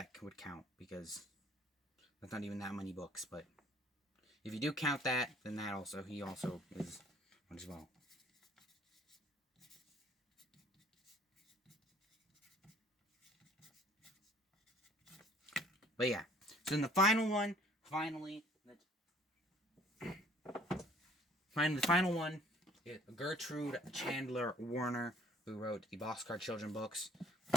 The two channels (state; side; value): normal; both; correlation 0.57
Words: would count, because that's not even that many books, but if you do count that, then he also is one as well. But yeah, so in the final one, the final one is Gertrude Chandler Warner, who wrote the Boxcar Children books,